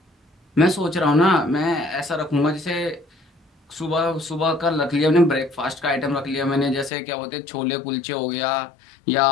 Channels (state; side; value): drops out; right; at 6.9 s